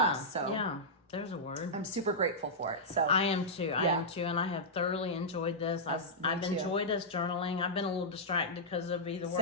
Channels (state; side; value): normal; both; correlation -0.10